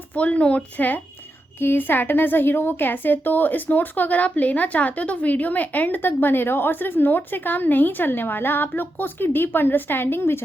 फुल नोट्स है कि सैटर्न एज अ हीरो वो कैसे है। तो इस नोट्स को अगर आप लेना चाहते हो तो वीडियो में एंड तक बने रहो। और सिर्फ नोट से काम नहीं चलने वाला, आप लोग को उसकी डीप अंडरस्टैंडिंग भी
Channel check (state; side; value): normal; both; correlation 0.87